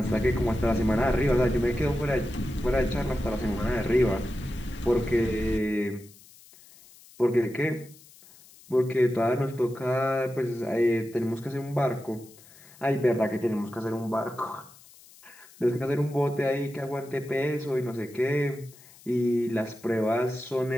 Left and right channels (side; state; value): left; noise; hiss, 24 dB below the sound